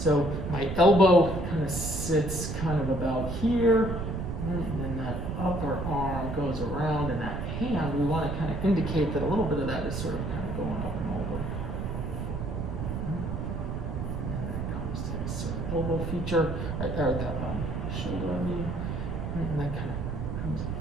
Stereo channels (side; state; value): right; noise; rumble, 3 dB below the sound